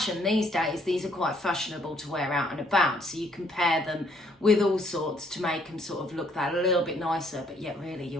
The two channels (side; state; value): both; normal; correlation 0.67